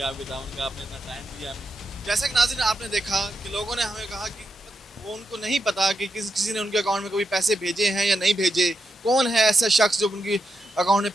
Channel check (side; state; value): both; normal; correlation 0.85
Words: आपके ताउन का, आपने इतना टाइम दिया हमें। जैसा कि नाज़रीन आपने देखा कि लोगों ने हमें कहा कि वो उनको नहीं पता कि किसी ने उनके अकाउंट में कभी पैसे भेजे हैं या नहीं भेजे, कौन है ऐसा शख्स जो उनकी अकाउंट में